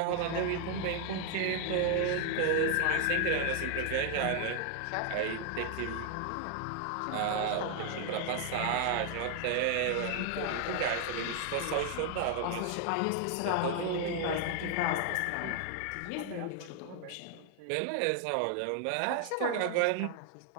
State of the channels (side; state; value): both; different; correlation 0.00